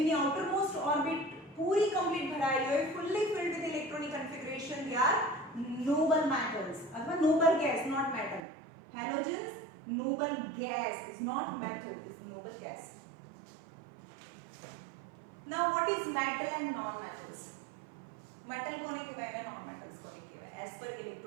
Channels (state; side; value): drops out; left; at 8.4 s